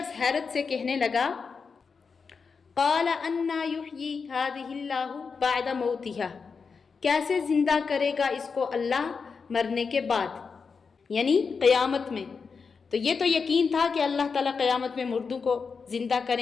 حیرت سے کہنے لگا، قال انا یحیی ہذہ اللہ بعد موتہا، کیسے زندہ کرے گا اس کو اللہ مرنے کے بعد، یعنی قیامت میں۔ تو یہ تو یقین تھا کہ اللہ تعالیٰ قیامت میں مردوں کو زندہ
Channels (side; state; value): right; quieter; 5.3 dB